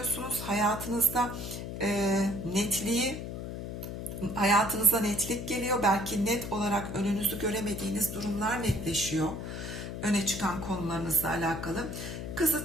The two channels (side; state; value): left; noise; hum, 7 dB below the sound